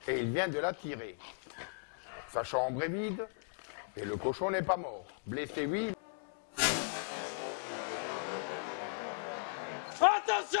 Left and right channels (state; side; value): silent; right; digital silence